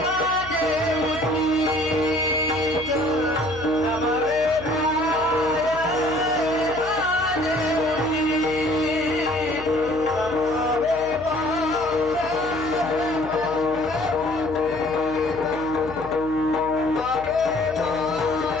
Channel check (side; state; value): left; noise; hum, 15 dB below the sound